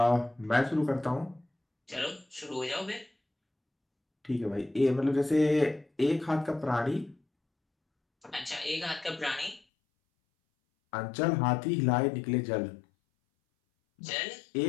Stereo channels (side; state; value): right; drops out; at 9.6 s